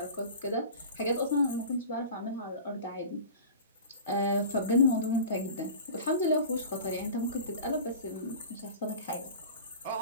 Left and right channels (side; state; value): both; inverted; correlation -0.37